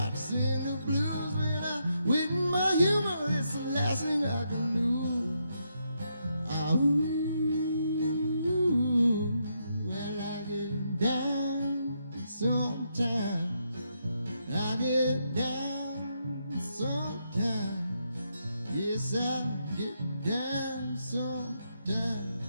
to sing the blues. When I wit my humor, it's the last thing I can do. Well, I get down sometimes. I get down sometimes. Yes, I get down sometimes.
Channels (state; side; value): inverted; both; correlation -0.80